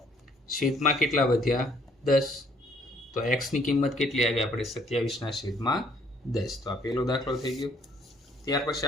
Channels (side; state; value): both; normal; correlation 0.63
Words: છેદમાં કેટલા વધ્યા? 10. તો x ની કિંમત કેટલી આવી? આપણે 27 ના છેદમાં 10. તો આ પહેલો દાખલો થઈ ગયો. ત્યાર પછી